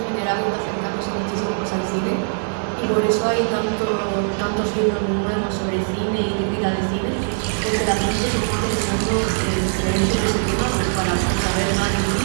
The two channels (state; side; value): silent; left; 65 dB below the other